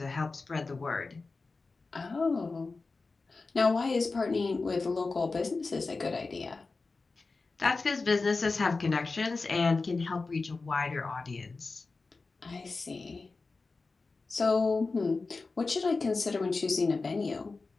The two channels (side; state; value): right; quieter; 3.9 dB